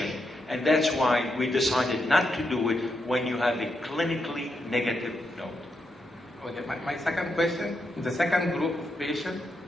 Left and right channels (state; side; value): normal; both; correlation 0.83